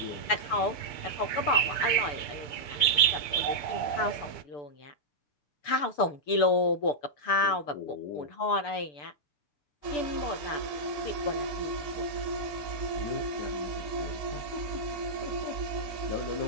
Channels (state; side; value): late; right; 6.8 ms